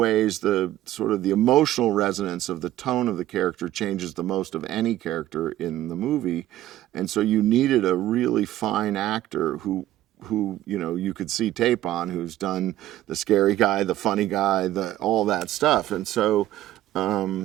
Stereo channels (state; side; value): quieter; left; 14.0 dB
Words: the sort of the emotional resonance of the tone of the character changes the most of any character in the movie. And so you needed a really fine actor who you could see tape on, who's done the scary guy, the funny guy, all that stuff. And so